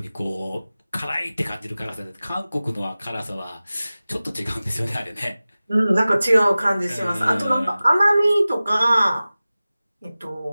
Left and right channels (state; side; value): inverted; both; correlation -0.97